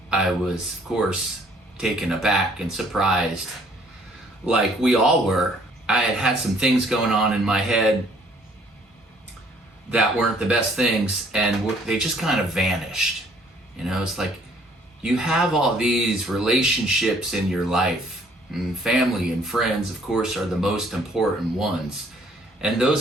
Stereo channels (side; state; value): both; normal; correlation 0.61